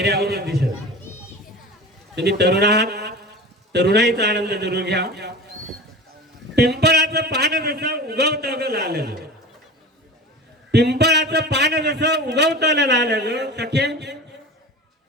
दिसत. तुम्ही तरुण आहात, तरुणाईचा आनंद जरूर घ्या. पिंपळाचं पान जसं उगवतं ग लाल, पिंपळाचं पान जसं उगवतं लाल ग, सखे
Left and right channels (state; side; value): normal; both; correlation 0.34